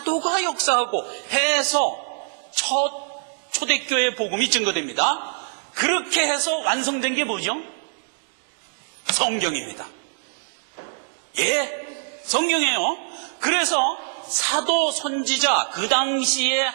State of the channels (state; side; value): silent; left; digital silence